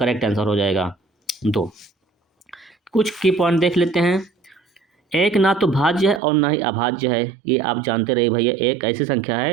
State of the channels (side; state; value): left; drops out; at 6.2 s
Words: आंसर हो जाएगा। 2 कुछ की पॉइंट देख लेते हैं। एक ना तो भाज्य है और ना ही अभाज्य है, ये आप जानते रहिए भैया, एक ऐसी संख्या